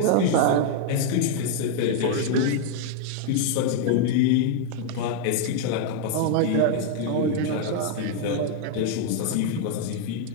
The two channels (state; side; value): different; both; correlation 0.00